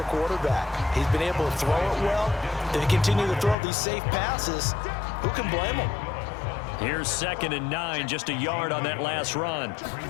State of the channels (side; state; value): right; drops out; at 3.6 s